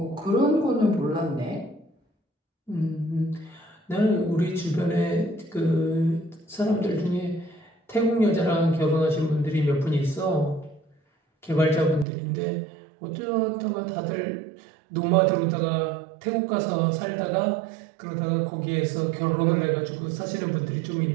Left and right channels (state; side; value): drops out; left; at 12.1 s